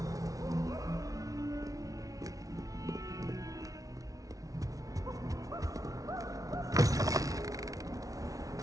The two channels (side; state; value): left; late; 0.17 ms